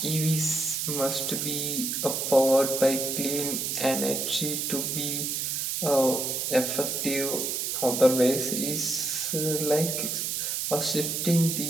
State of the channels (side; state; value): right; noise; hiss, 1 dB below the sound